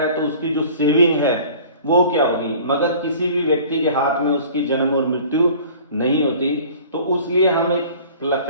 तो उसकी जो सेविंग है वो क्या होगी, मगर किसी भी व्यक्ति के हाथ में उसकी जन्म और मृत्यु नहीं होती। तो उसलिए हम एक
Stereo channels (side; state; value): both; inverted; correlation -0.46